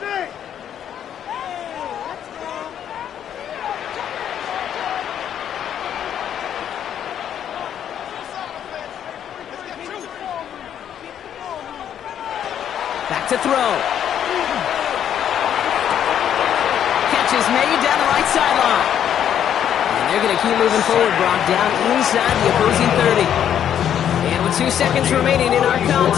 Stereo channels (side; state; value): right; quieter; 9.7 dB